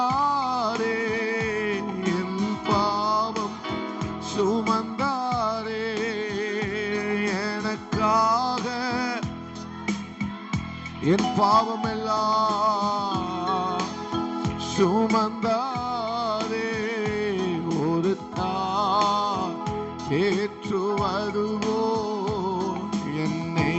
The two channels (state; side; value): identical; both; correlation 1.00